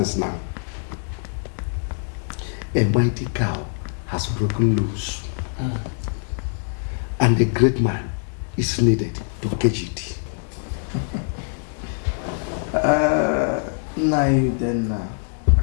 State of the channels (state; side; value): silent; right; digital silence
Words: now, a mighty cow has broken loose. And a great man is needed to catch it. Nai, then